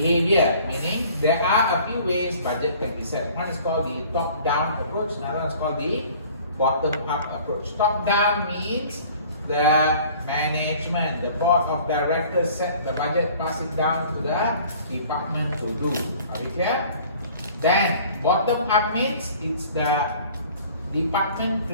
meaning there are a few ways budget can be set. One is called the top-down approach, another one is called the bottom-up approach. Top-down means the management, the board of directors set the budget, pass it down to the department to do. Are we clear? Then bottom-up means it's the department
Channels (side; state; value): both; inverted; correlation -0.50